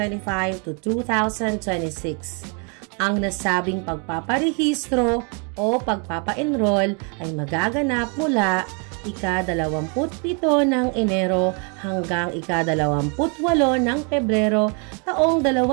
to 2026. Ang nasabing pagpaparehistro o pagpapa-enroll ay magaganap mula ika-27 ng Enero hanggang ika-28 ng Pebrero taong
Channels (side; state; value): left; quieter; 36.9 dB